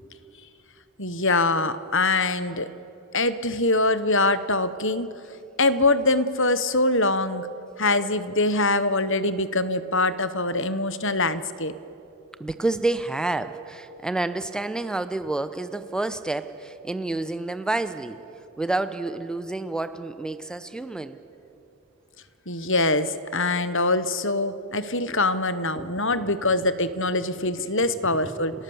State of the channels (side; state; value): both; normal; correlation -0.10